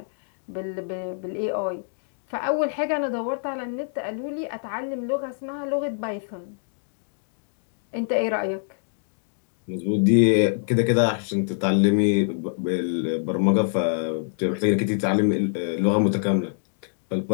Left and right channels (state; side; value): silent; right; digital silence